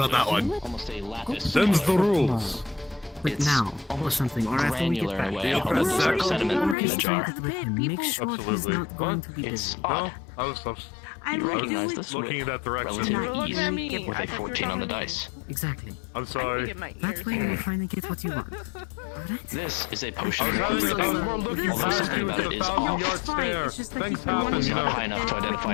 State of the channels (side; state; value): right; drops out; at 6.8 s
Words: that one. Almost a lapis. Them's the rules. But now, or something, or after we get Granular back. in a way. I hope there's like sediment in the jar. Make sure he's Absolutely. not going to be It's busy. odd. I was You recognize this looking in with that direction. relative ease me. with a 14 on the dice. Exactly. I'm sorry. That way you'll finally get what you want. Alright? This is a potion. I was more looking Although past something you about to it the is 1,000 off. yard stare. Things happen, It's you not know. high enough to